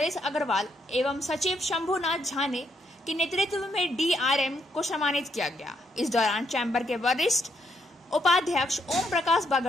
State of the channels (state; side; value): normal; both; correlation 0.75